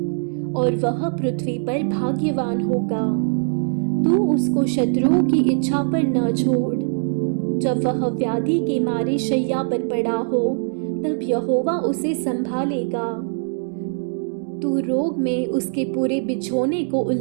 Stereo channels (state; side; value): silent; left; digital silence